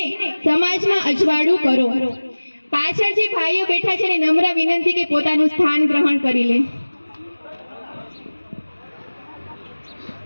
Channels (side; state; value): both; inverted; correlation -1.00